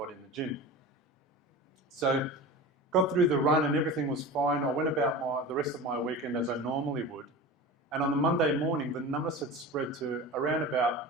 in the gym. So got through the run and everything was fine. I went about the rest of my weekend as I normally would. And on the Monday morning, the numbness had spread to around about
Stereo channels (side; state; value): both; normal; correlation 0.32